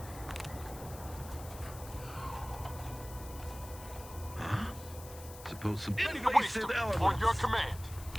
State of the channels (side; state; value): left; noise; hiss, 16 dB below the sound